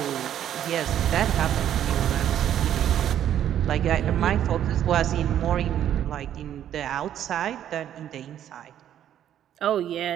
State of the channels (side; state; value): left; quieter; 10.6 dB